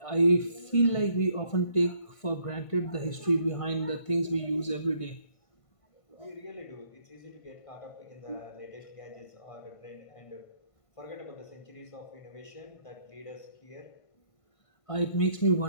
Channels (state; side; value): late; right; 1.5 ms